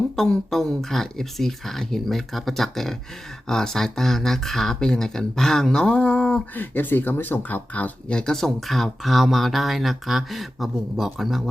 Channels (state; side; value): normal; both; correlation 0.93